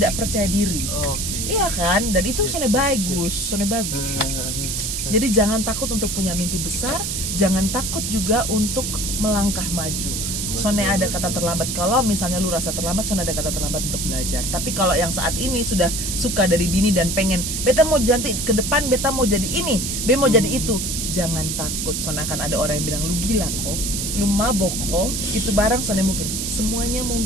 percaya diri. Oke. Iya kan? Dan itu soalnya bagus. Jadi jangan takut untuk punya mimpi besar, jangan takut juga untuk melangkah maju. Soalnya ada kata terlambat. Kalau misalnya lu rasa terlambat, soalnya ada kata terlambat untuk belajar. Tapi kalau yang saat ini sudah suka dari dini dan pengen, beta mau janti ke depan, beta mau jadi ini, beta mau jadi itu, jangan takut. Soalnya akan ada orang yang bilang lu gila kok, lu mabok kok, itu barang soalnya mungkin. Semuanya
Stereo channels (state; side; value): noise; right; hiss, 2 dB below the sound